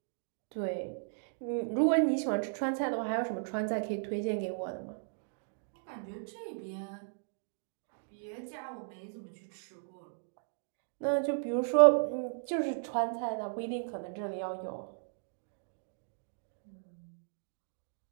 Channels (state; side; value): silent; left; digital silence